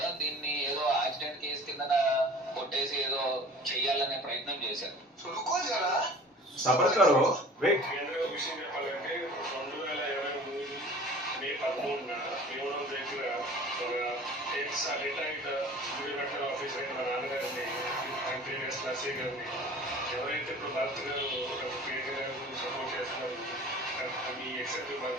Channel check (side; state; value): both; normal; correlation 0.44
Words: దీన్ని ఏదో యాక్సిడెంట్ కేసు కింద కొట్టేసి ఏదో చెయ్యాలనే ప్రయత్నం చేశారు. సబర్కరు వెయిట్. కేంద్ర విషయం చెప్పాలంటే 2023 మే 13న భీమవరం దగ్గర ఒక రిటైర్డ్ రిటైర్డ్ ఆఫీసర్ మా నాన్నగారిని అంటే నర్సీ గారిని ఎవరైతే ఇప్పుడు భరత్ గారు ప్రియాంక గారి గురించి సపోర్ట్ చేస్తున్నారు మీ ఎక్సెప్ట్